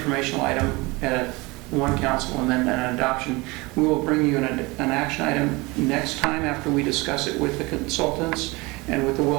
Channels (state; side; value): quieter; left; 24.1 dB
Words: item at one council and then an adoption. We will bring you an action item next time after we discuss it with the consultants and with the